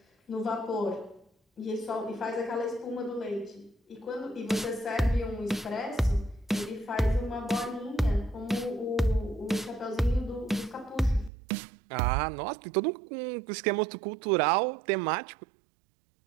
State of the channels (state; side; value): drops out; left; at 11.3 s